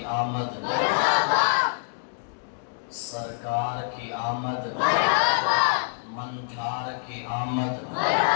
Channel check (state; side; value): silent; right; digital silence